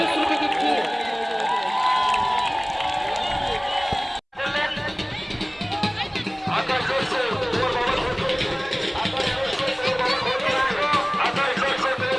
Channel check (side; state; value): both; identical; correlation 1.00